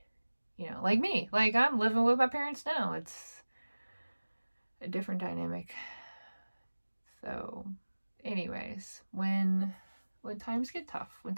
like me, like I'm living with my parents now. It's a different dynamic. So, anyways, when times get tough, when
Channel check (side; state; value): both; inverted; correlation -1.00